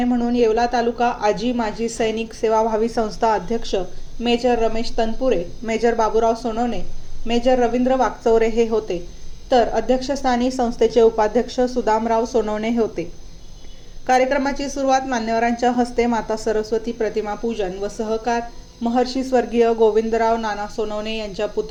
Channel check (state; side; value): identical; both; correlation 1.00